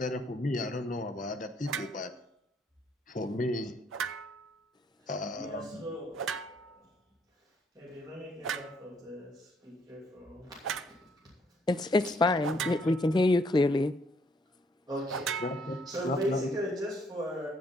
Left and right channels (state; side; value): normal; both; correlation 0.68